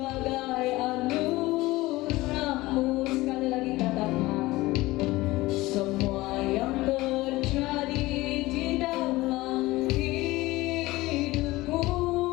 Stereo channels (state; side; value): quieter; right; 19.4 dB